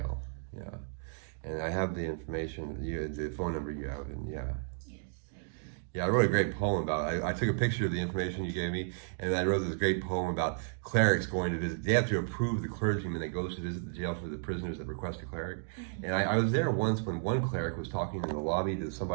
yeah. And I have the information, the phone number you have, and yeah. Yes, I do. Yeah, I wrote a great poem about it. I took a picture of the information you gave me, and I wrote this great poem about clerics going to visit. They have to approve the clergyman that goes to visit the jail for the prisoners that request a cleric. Mm-hmm. And I was there once when one cleric was talking in the lobby to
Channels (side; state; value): left; silent; digital silence